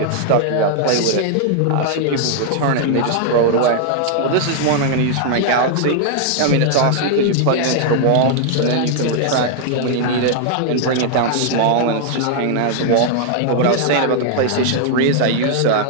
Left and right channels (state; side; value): different; both; correlation -0.01